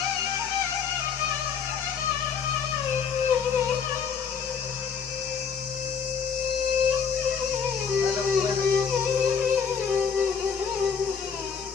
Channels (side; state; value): right; quieter; 6.6 dB